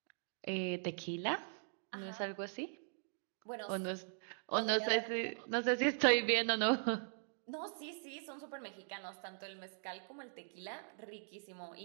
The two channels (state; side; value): silent; left; digital silence